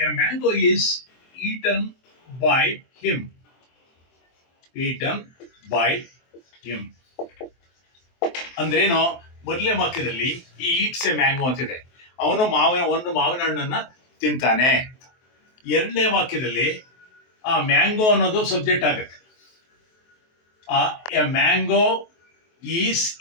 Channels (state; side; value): late; right; 23 ms